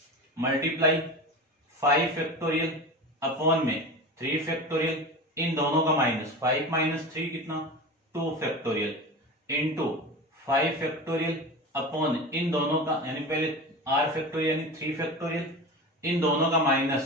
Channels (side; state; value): both; normal; correlation 0.29